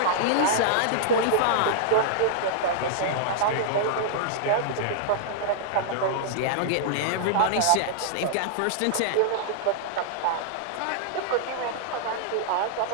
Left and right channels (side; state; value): both; different; correlation -0.01